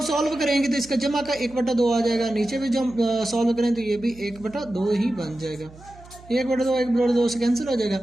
सॉल्व करेंगे तो इसका जमा का 1/2 आ जाएगा, नीचे भी जब सॉल्व करें तो ये भी 1/2 ही बन जाएगा। 1/2 से कैंसिल हो जाएगा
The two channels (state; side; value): noise; right; hum, 21 dB below the sound